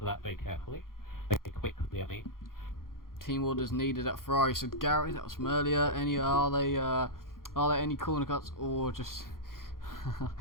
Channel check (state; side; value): late; right; 0.91 ms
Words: that very carefully. Very quickly, I mean. Team orders needed at Ferrari, said Gary. That was from earlier. Are there any corner cuts or just